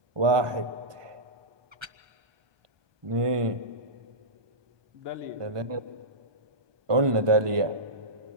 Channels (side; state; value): left; late; 1.2 ms